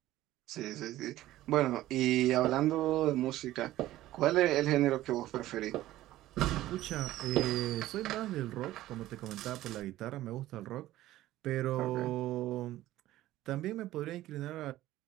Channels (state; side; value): quieter; left; 15.2 dB